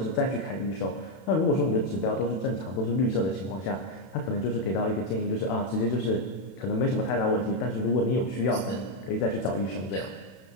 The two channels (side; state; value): right; late; 32 ms